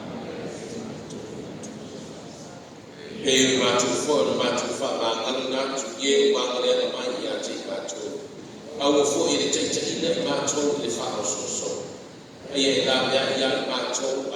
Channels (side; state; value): both; identical; correlation 1.00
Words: Hei le mātou fo, le mātou wha ngāngari nātu, ie o wāngari ana mai i a te mātou. Au o fo i le teitaina i mātou le wha o so. Ai e la mea i a mātou